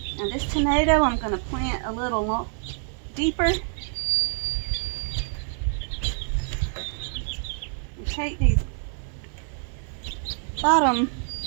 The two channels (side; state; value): left; silent; 61 dB below the other